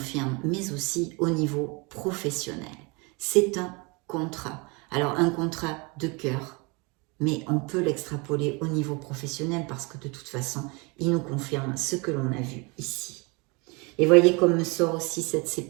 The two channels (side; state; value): left; quieter; 28.9 dB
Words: mais aussi au niveau professionnel. C'est un contrat. Alors un contrat de cœur, mais on peut l'extrapoler au niveau professionnel parce que de toute façon, il nous confirme ce que l'on a vu ici. Et voyez comme me sort aussi cette